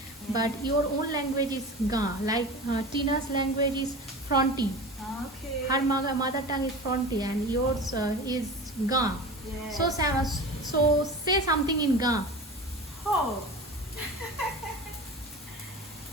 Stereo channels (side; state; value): both; normal; correlation 0.33